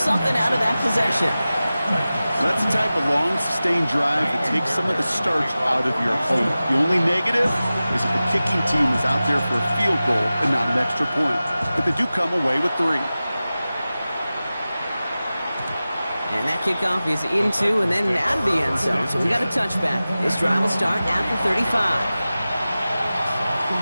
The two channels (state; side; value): inverted; both; correlation -0.96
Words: out of that possession. That's the type of long, sustained drive that takes some of the starch out of your opponent. The only negative is if the kicking team is out there for a field goal and not an extra point. But they do come away with 3. And that kickoff is into and then out of the end zone. So we got a touchback. This drive will start at the 35.